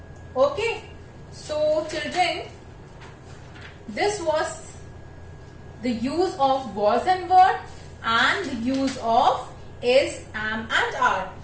Okay. So children, this was the use of was and were, and the use of is, am and are.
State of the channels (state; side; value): identical; both; correlation 1.00